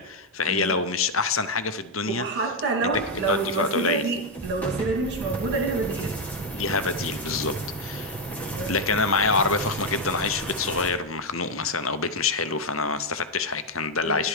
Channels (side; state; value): both; normal; correlation 0.03